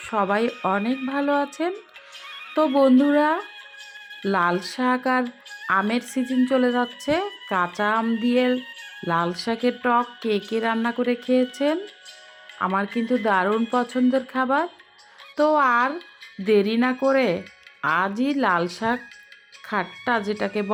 সবাই অনেক ভালো আছেন। তো বন্ধুরা, লাল শাক আর আমের সিজন চলে যাচ্ছে। কাঁচা আম দিয়ে লাল শাকের টক কে কে রান্না করে খেয়েছেন? আমার কিন্তু দারুণ পছন্দের খাবার। তো আর দেরি না করে আজই লাল শাক খাট্টা যেটাকে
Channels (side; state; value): both; identical; correlation 1.00